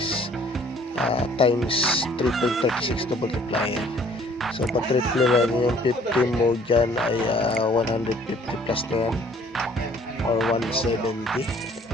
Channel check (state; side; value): normal; both; correlation 0.57